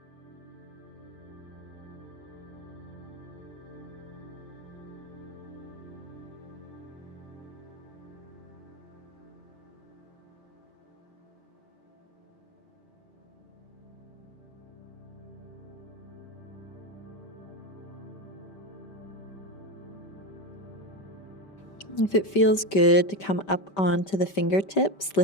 If it feels good to come up onto the fingertips,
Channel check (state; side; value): late; right; 5.1 ms